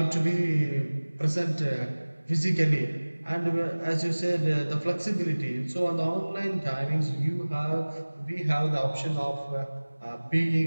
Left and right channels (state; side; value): inverted; both; correlation -1.00